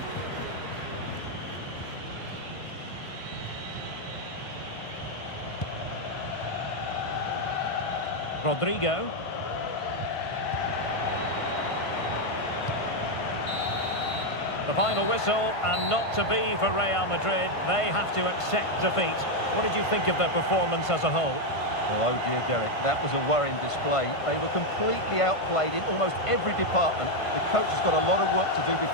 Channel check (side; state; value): right; late; 1.5 ms